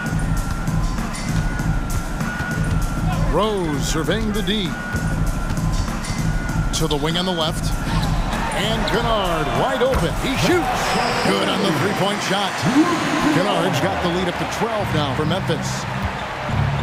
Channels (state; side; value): identical; both; correlation 1.00